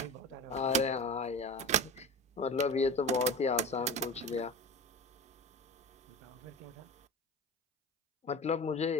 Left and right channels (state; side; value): normal; both; correlation 0.31